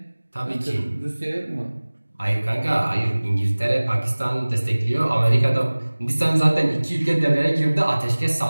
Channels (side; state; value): both; inverted; correlation -1.00